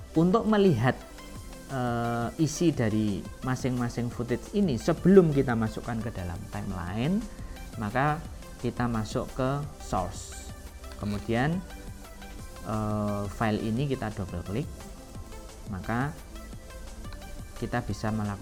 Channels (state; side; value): identical; both; correlation 1.00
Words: untuk melihat isi dari masing-masing footage ini sebelum kita masukkan ke dalam timeline, maka kita masuk ke source, kemudian file ini kita double klik, maka kita bisa